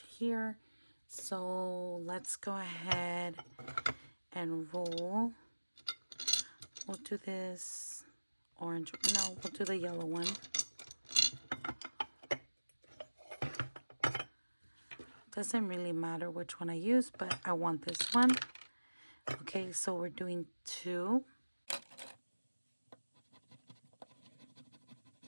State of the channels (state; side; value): inverted; both; correlation -1.00